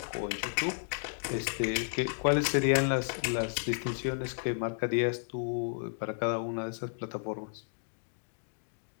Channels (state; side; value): silent; right; digital silence